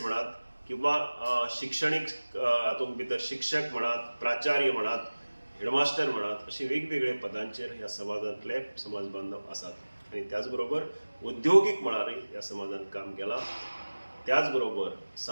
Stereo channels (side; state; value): both; inverted; correlation -1.00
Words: म्हणात, किंवा शिक्षणीक हातूंत भितर शिक्षक म्हणात, प्राचार्य म्हणात, हेडमास्टर म्हणात, अशी वेगवेगळे पदांचेर ह्या समाजांतले समाज बांधव आसात. आनी त्याच बरोबर उद्योगीक मळारय ह्या समाजान काम केलां. त्याच बरोबर